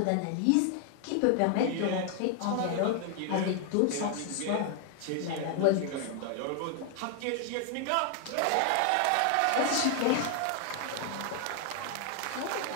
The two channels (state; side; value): different; both; correlation 0.00